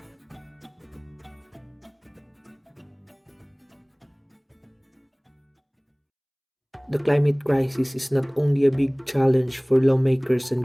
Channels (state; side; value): identical; both; correlation 1.00